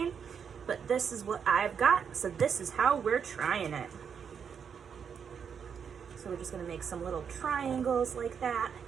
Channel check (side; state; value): left; quieter; 7.1 dB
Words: But this is what I've got, so this is how we're trying it. So we're just going to make some little triangles like that.